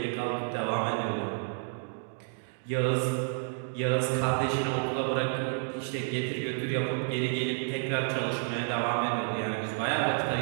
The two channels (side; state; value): left; silent; digital silence